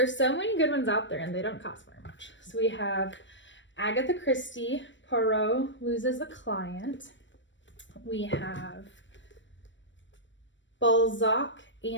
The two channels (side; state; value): right; late; 0.54 ms